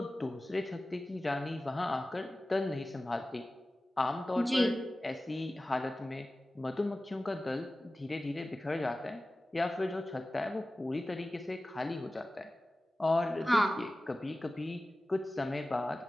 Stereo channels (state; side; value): normal; both; correlation 0.96